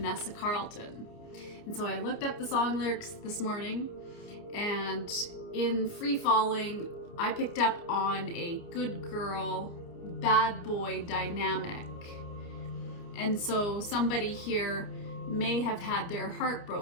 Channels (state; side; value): late; right; 29 ms